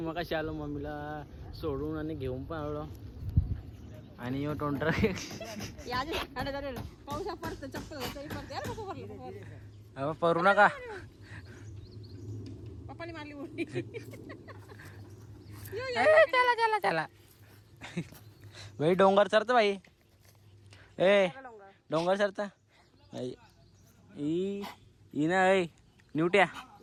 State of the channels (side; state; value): both; identical; correlation 1.00